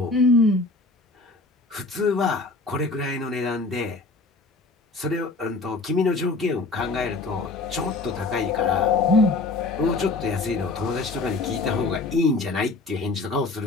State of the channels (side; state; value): right; quieter; 3.5 dB